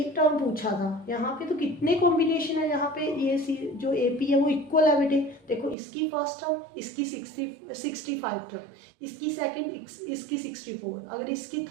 टर्म पूछा था, यहाँ पे तो कितने कॉम्बिनेशन है, यहाँ पे ये जो AP है वो इक्वल है बेटे। देखो इसकी फर्स्ट टर्म, इसकी 65 टर्म, इसकी सेकंड, इसकी 64, अगर इसकी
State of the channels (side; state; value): left; drops out; at 5.8 s